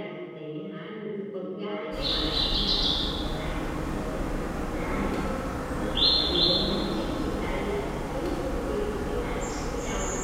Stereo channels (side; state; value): both; identical; correlation 1.00